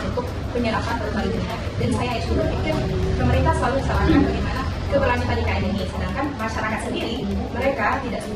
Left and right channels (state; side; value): identical; both; correlation 1.00